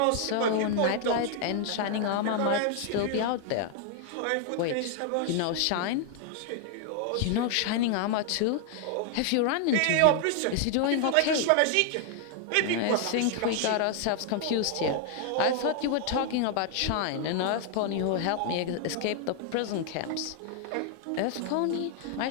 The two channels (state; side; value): different; both; correlation 0.00